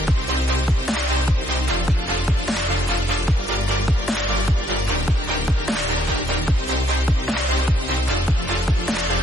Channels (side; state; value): both; normal; correlation 0.69